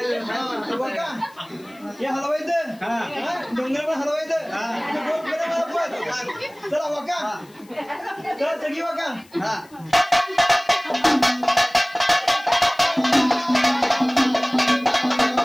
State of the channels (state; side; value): noise; left; hiss, 28 dB below the sound